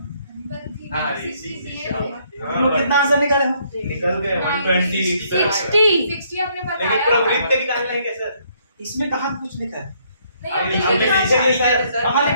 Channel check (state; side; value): inverted; both; correlation -0.68